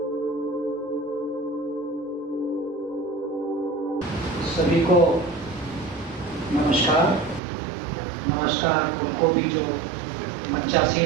सभी को नमस्कार। नमस्कार उनको भी जो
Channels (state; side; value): drops out; left; at 7.4 s